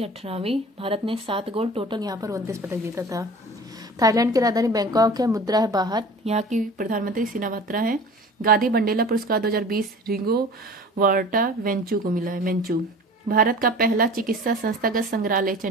18वीं। भारत ने 7 गोल्ड, टोटल यहाँ पर 29 पदक जीता था। थाईलैंड की राजधानी बैंकॉक है। मुद्रा है बाहत। यहाँ की प्रधानमंत्री सिनावात्रा है। गांधी बंडेला पुरस्कार 2020 रिंगो वार्टा वेंचू को मिला है। वेंचू। भारत का पहला चिकित्सा संस्थागत संग्रहालय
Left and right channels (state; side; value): normal; both; correlation 0.41